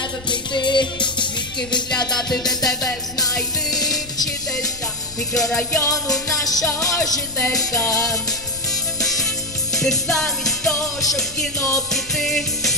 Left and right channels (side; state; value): left; noise; rumble, 18 dB below the sound